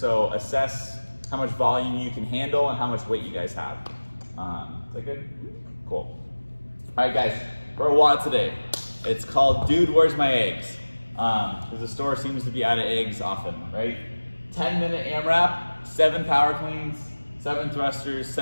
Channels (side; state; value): both; inverted; correlation -1.00